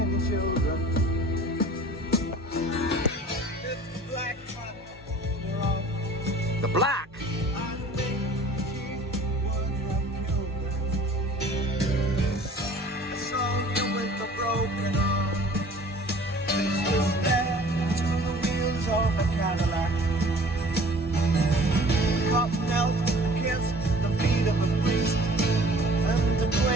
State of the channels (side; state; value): both; normal; correlation 0.48